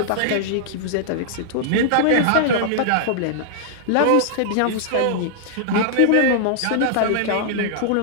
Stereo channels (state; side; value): different; both; correlation -0.01